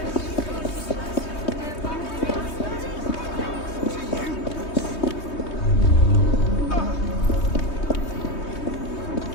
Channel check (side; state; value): right; late; 3.2 ms